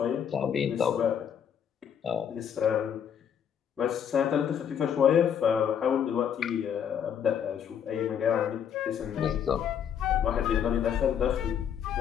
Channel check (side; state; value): right; quieter; 8.4 dB